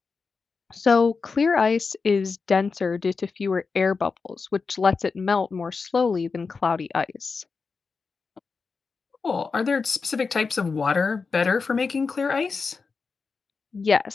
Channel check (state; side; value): quieter; right; 4.7 dB